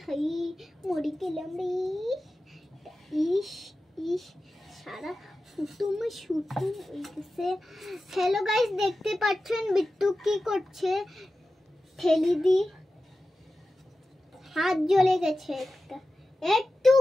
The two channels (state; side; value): normal; both; correlation 0.94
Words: হাই মরি গেলাম রে। ইস ইস সারা ফুটুমে শুটুম হয়ে গেছে। হ্যালো গাইস, দেখতে পাচ্ছেন বিট্টু কি করছে, ঠেলি দি হাত জ্বলে গেছে, একটু